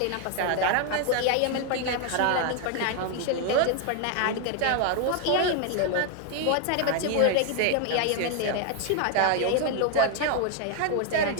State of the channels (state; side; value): different; both; correlation 0.00